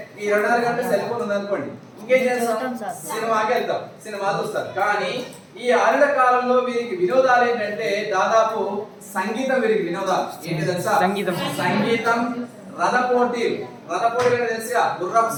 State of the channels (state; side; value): identical; both; correlation 1.00